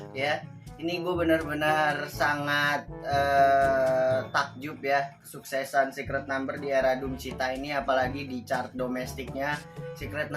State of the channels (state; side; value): identical; both; correlation 1.00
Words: ya, ini gue benar-benar sangat takjub ya kesuksesan Secret Number di era Doom Cita ini. Apalagi di chart domestiknya Secret